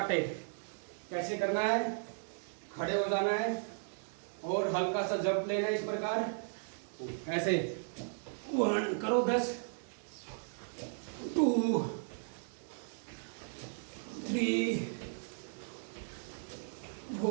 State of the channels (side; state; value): left; silent; digital silence